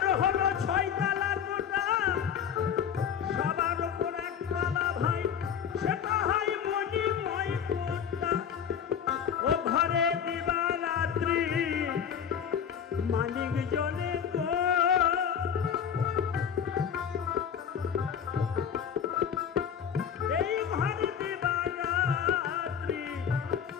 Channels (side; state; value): right; quieter; 8.1 dB